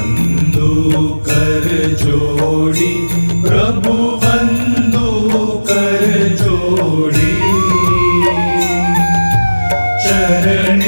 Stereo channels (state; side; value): inverted; both; correlation -1.00